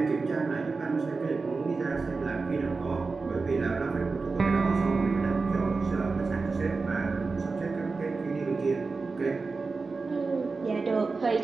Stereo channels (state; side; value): quieter; left; 4.2 dB